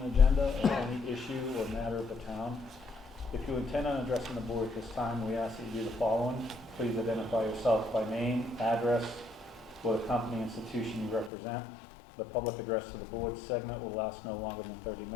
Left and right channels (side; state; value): right; drops out; at 11.3 s